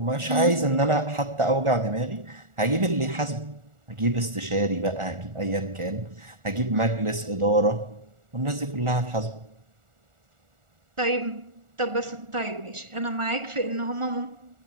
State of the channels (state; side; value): late; left; 1.4 ms